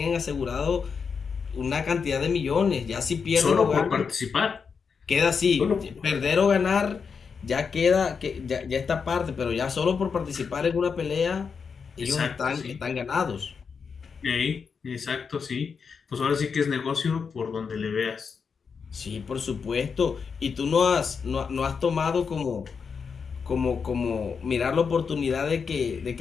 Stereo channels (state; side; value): quieter; right; 5.8 dB